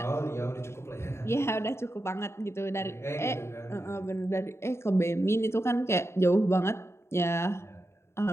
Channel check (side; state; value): right; late; 0.13 ms